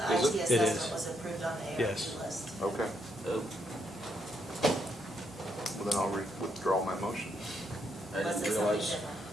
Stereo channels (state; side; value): normal; both; correlation 0.77